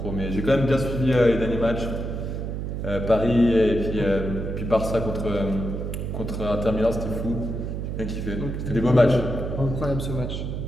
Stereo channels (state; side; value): noise; right; hum, 4 dB below the sound